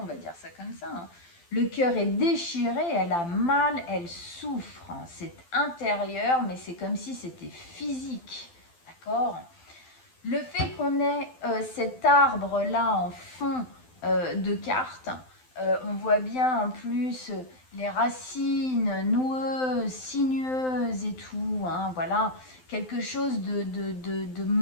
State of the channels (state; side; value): late; right; 12 ms